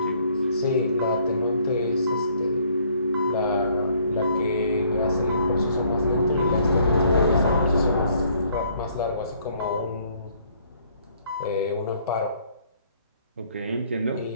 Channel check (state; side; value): inverted; both; correlation -0.63